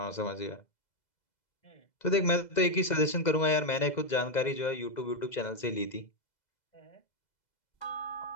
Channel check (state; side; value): late; right; 2.0 ms